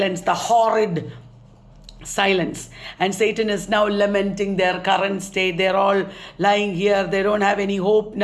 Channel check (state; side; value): identical; both; correlation 1.00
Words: the horrid silence. And Satan is now lamenting their current state. They're all lying here. They don't have any hope